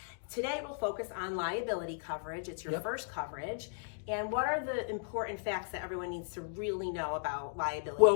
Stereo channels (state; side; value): silent; right; digital silence